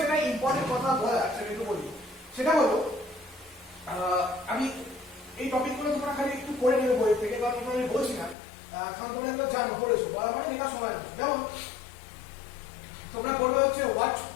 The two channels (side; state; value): right; drops out; at 8.3 s